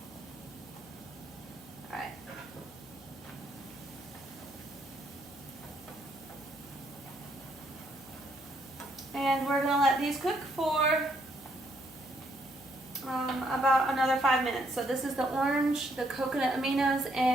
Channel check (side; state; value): left; noise; hum, 23 dB below the sound